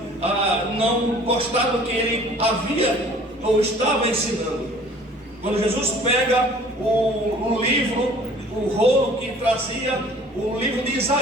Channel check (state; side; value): normal; both; correlation 0.51